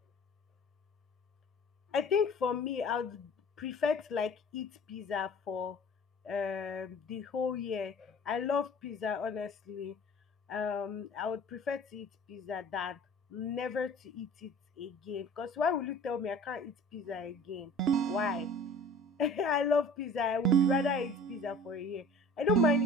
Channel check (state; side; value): normal; both; correlation 0.46